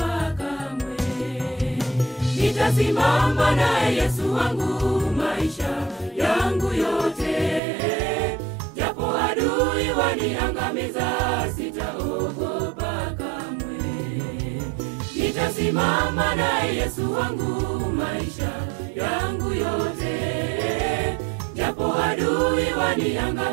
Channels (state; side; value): drops out; left; at 7.6 s